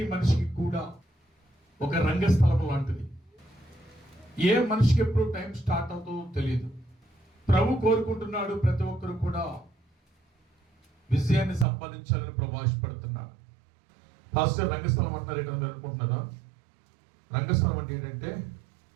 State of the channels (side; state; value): left; drops out; at 11.7 s